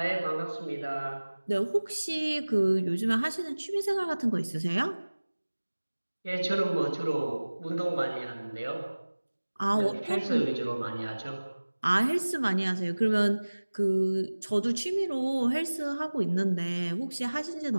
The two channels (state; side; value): inverted; both; correlation -1.00